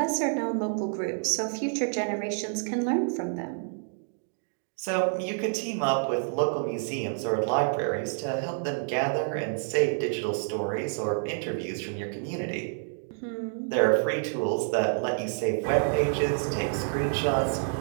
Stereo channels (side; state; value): left; silent; digital silence